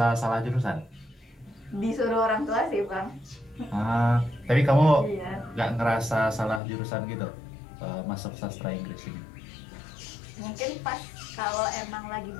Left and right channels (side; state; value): right; drops out; at 6.6 s